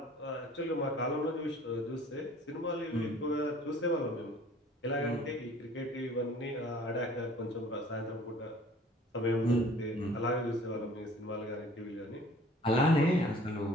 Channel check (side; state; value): both; normal; correlation 0.51